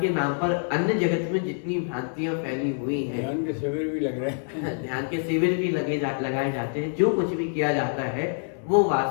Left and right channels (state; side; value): silent; right; 61 dB below the other